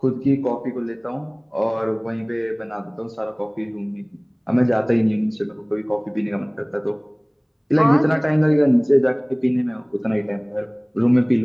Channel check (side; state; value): both; identical; correlation 1.00